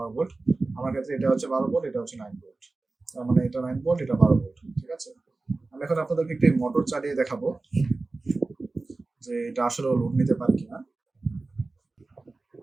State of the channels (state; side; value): quieter; left; 3.4 dB